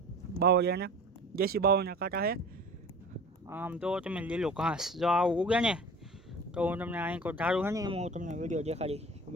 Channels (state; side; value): normal; both; correlation 0.40